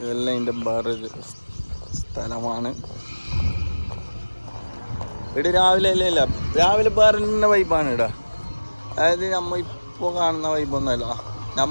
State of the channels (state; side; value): inverted; both; correlation -1.00